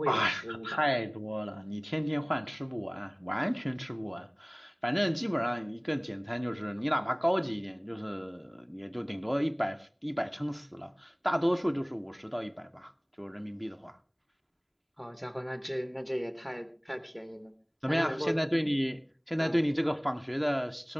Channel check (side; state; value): both; identical; correlation 1.00